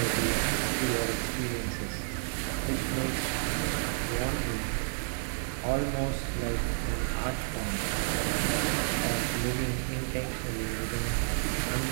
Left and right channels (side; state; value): left; silent; digital silence